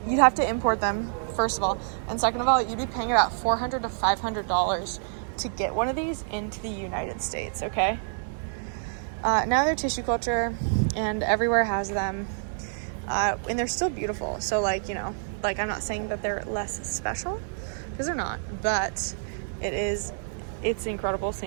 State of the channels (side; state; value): left; silent; digital silence